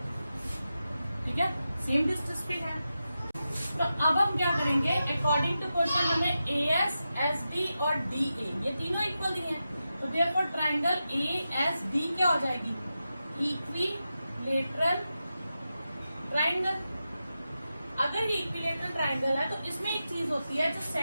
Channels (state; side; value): inverted; both; correlation -0.90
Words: ठीक है, सेम डिस्टेंस पे है। तो अब हम क्या करेंगे, अकॉर्डिंग टू क्वेश्चन हमें AS, SD और DA ये तीनों इक्वल दिए हैं, तो देयरफॉर ट्राइंगल ASD क्या हो जाएगी, इक्विलेटरल ट्राइंगल। अगर ये इक्विलेटरल ट्राइंगल है तो इसमें एक चीज होती है, जो